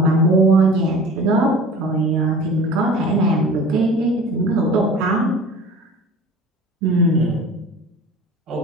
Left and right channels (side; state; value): both; normal; correlation 0.41